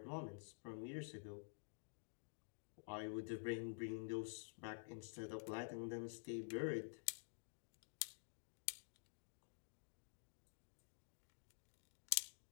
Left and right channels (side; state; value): right; silent; digital silence